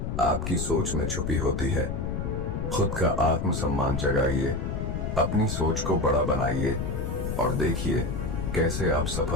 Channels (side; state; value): left; noise; rumble, 3 dB below the sound